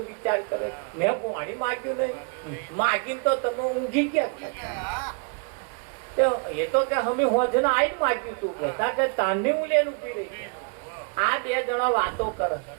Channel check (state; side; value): quieter; left; 37.1 dB